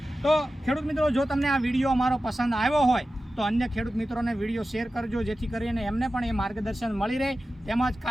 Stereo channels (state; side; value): normal; both; correlation 0.94